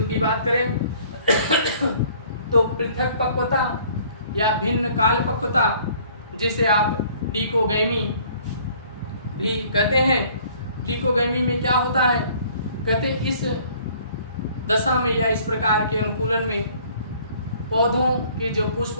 की बात करें तो पृथक पक्वता या भिन्न काल पक्वता, जिसे आप डिकोगैमी भी कहते हैं। डिकोगैमी में क्या होता है, कहते इस दशा में या इस प्रकार के अनुकूलन में पौधों के जो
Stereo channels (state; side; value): inverted; both; correlation -0.56